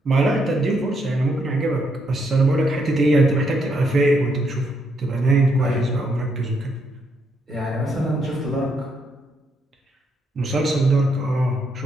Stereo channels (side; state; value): both; normal; correlation 0.76